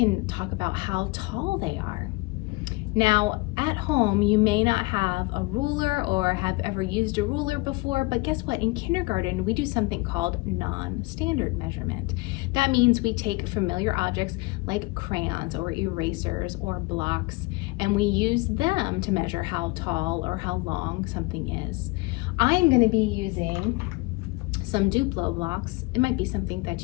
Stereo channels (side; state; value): right; quieter; 24.7 dB